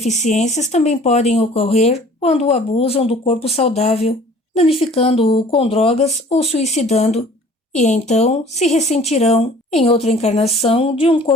também podem ocorrer quando abusam do corpo saudável, danificando-o com drogas ou suicidando, e então se ressentirão, em outra encarnação, de um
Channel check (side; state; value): both; normal; correlation 0.50